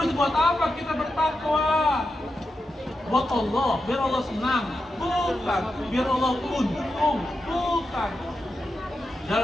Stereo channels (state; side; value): normal; both; correlation 0.88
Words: buat apa kita bertakwa? Buat Allah, biar Allah senang. Bukan, biar Allah untung. Bukan.